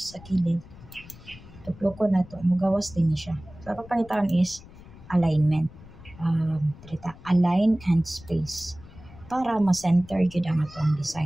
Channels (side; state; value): left; noise; rumble, 19 dB below the sound